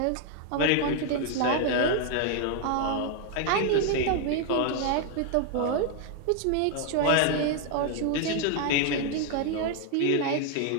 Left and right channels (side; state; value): both; different; correlation 0.00